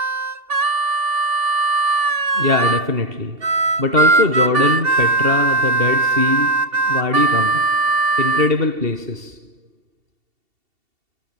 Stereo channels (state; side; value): late; left; 2.7 ms